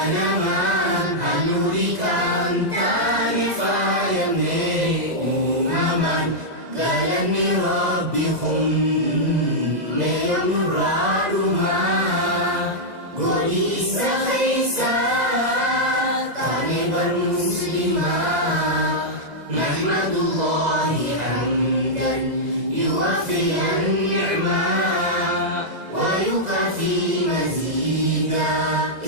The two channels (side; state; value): left; late; 2.0 ms